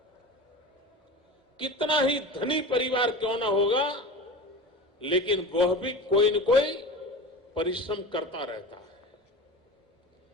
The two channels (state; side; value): normal; both; correlation 0.32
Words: कितना ही धनी परिवार क्यों ना होगा, लेकिन वह भी कोई न कोई परिश्रम करता रहता है।